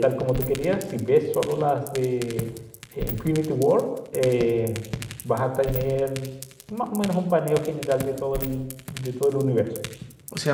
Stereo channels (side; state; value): both; identical; correlation 1.00